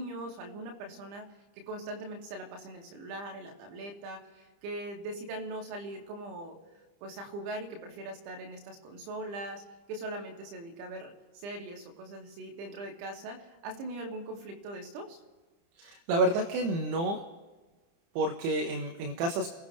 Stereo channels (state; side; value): late; left; 30 ms